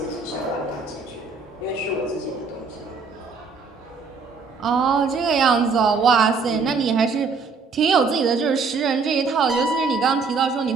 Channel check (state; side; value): quieter; left; 4.7 dB